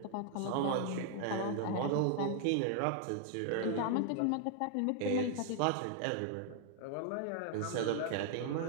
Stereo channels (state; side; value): different; both; correlation 0.00